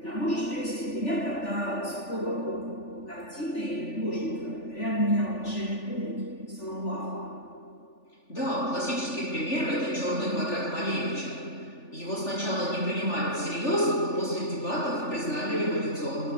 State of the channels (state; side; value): late; right; 3.4 ms